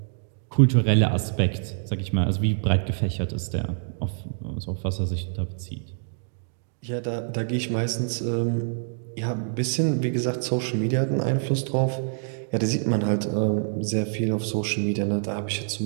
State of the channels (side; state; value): left; silent; digital silence